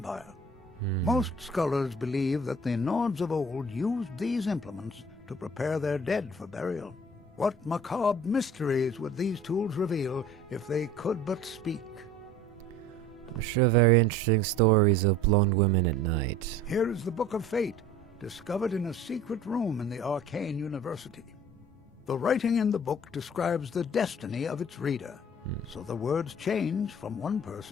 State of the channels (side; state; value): both; normal; correlation 0.46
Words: Most scholars believe that the Nords of old used these implements to prepare their dead for burial. What macabre mysteries would these tools reveal if they could but speak? I'm sure very interesting stories of blonde women at night. Here is the Book of Fate, discovered in a secret room in the Arcane University. The writing in the book describes the destiny of its reader, so the words change from one